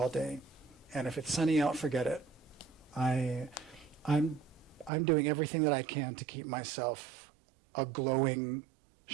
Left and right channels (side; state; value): left; drops out; at 4.9 s